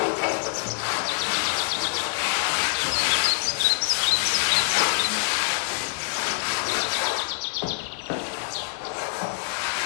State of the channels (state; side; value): silent; right; 62 dB below the other